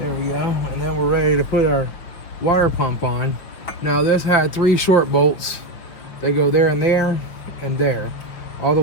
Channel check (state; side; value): late; right; 6.4 ms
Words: we go. And then we're ready to put our water pump on. Now this had 3 short bolts. They go there and there and there. All the